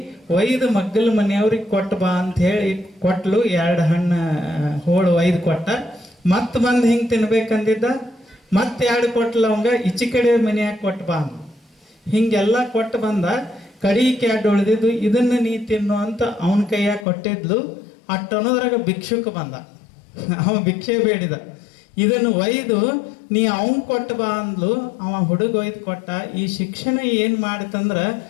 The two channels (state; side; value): drops out; right; at 17.1 s